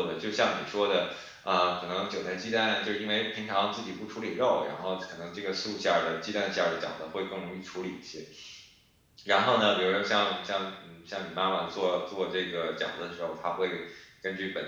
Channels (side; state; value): both; identical; correlation 1.00